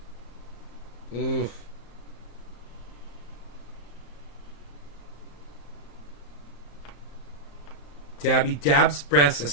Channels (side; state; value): right; late; 35 ms